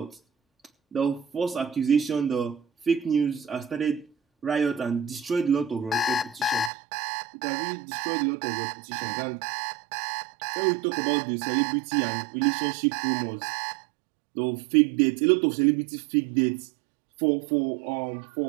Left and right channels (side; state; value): left; drops out; at 6.7 s